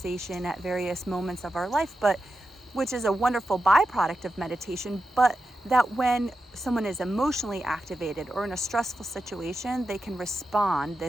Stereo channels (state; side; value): normal; both; correlation 0.89